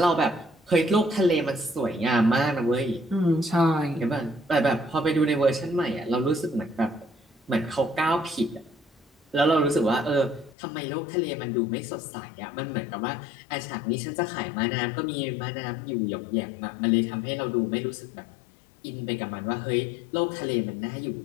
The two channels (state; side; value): drops out; right; at 10.6 s